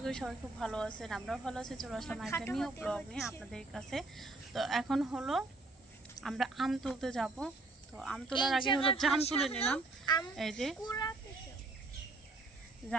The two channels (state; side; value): quieter; left; 3.2 dB